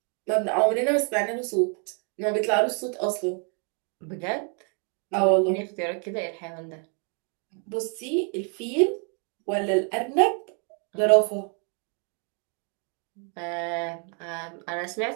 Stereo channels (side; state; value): left; quieter; 40.0 dB